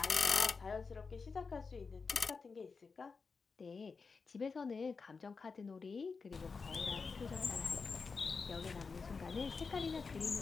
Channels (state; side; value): quieter; right; 4.8 dB